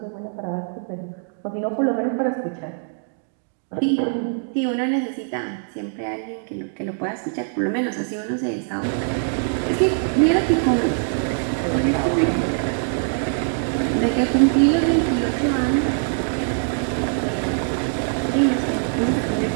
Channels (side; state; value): left; silent; 64 dB below the other